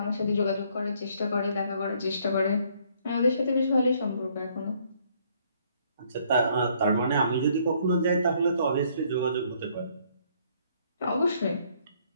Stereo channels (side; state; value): both; inverted; correlation -0.65